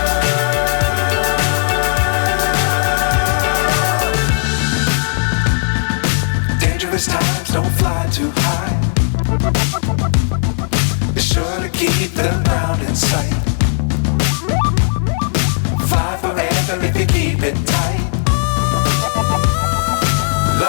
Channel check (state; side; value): silent; right; digital silence